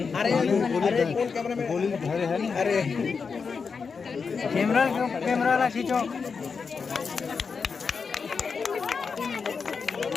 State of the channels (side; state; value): right; quieter; 5.3 dB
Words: अरे कैमरा में गोली धरे है। अरे कैमरा ला खींचो।